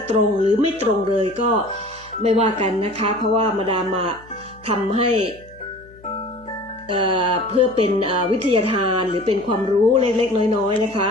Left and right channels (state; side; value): noise; left; hum, 24 dB below the sound